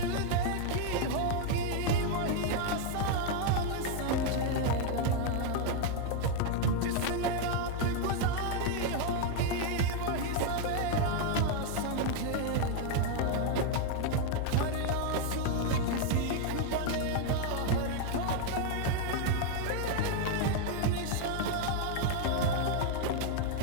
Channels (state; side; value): different; both; correlation 0.00